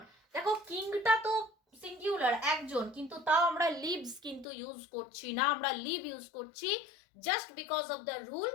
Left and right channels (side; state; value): right; drops out; at 4.5 s